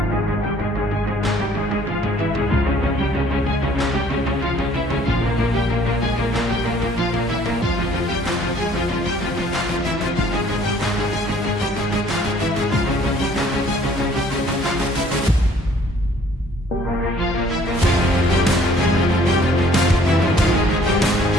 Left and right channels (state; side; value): normal; both; correlation 0.58